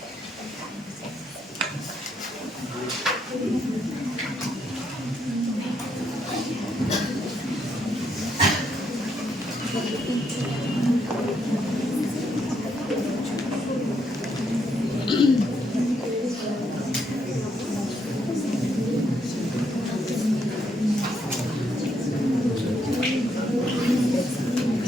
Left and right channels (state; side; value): normal; both; correlation 0.76